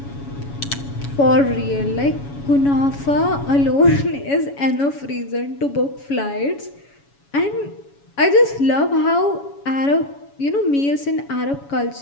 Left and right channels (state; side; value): late; right; 7.1 ms